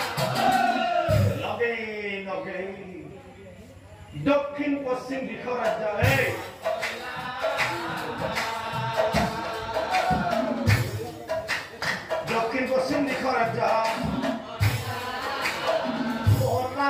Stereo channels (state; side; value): identical; both; correlation 1.00